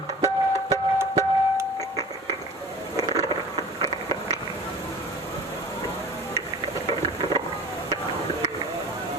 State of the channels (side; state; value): both; normal; correlation 0.40